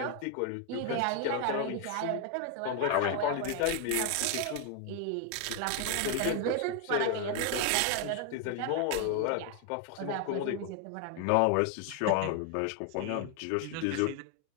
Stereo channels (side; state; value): both; different; correlation 0.01